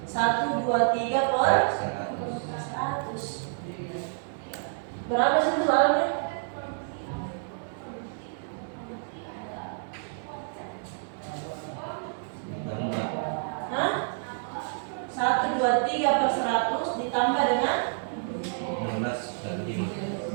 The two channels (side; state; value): left; silent; 59 dB below the other